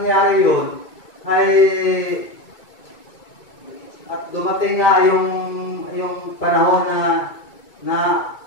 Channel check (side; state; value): right; late; 2.2 ms